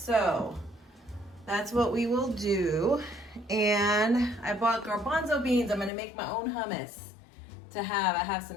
that's what we will do. And I bought garbanzo beans. I'm gonna make my own hummus to have. I have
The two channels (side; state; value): right; drops out; at 5.9 s